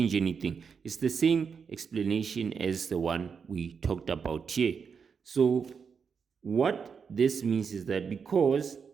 anything. It's the same explanation as the one we talked about here. So what this means is that because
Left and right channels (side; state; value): left; quieter; 6.1 dB